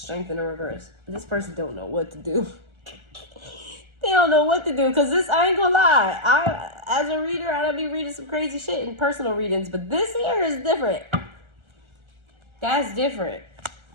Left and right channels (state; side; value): late; left; 1.4 ms